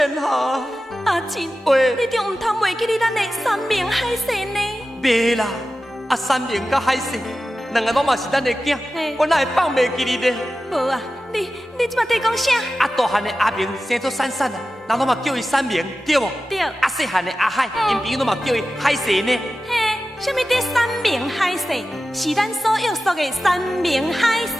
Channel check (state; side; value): normal; both; correlation 0.94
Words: 哈。阿珍，喂，你中唔通忘记你咱的三明海鲜呢？袂啦，啊三明甲海鲜，两个拢嘛是咱的囝嘿，我哪会放袂记你呢？无啊，你即马在讲啥？啊大汉的阿明生做珊珊啊，人拢嘛叫伊三明，对无？对。啊细汉的阿海，因朋友拢嘛叫伊海蛇呢。嘿，什么的三明海鲜？是咱所约束的三明海